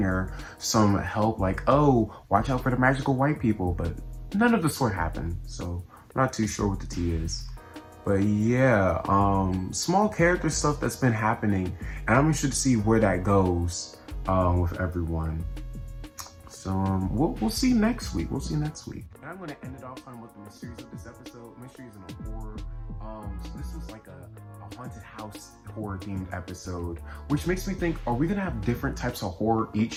or some help, like, oh, watch out for the magical white people, but none of the sort happened. So I'm not too sure what the tea is. But yeah, small character stuff that's been happening, and I'm interested to see where that goes with everyone. So we'll see next week. And I'm gonna end it off talking about the mysteries of this episode. Mysteries in a horror. So this was like a haunted house horror themed episode, which makes me think, are we gonna have different types of horror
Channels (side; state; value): both; identical; correlation 1.00